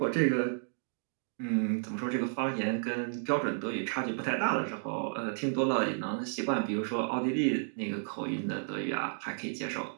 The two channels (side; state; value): left; silent; digital silence